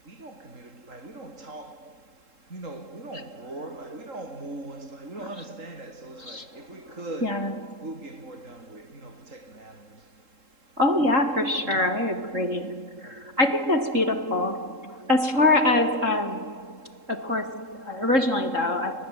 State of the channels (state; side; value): late; left; 3.7 ms